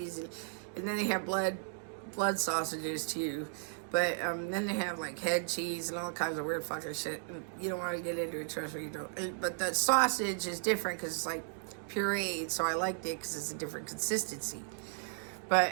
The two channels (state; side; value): silent; left; digital silence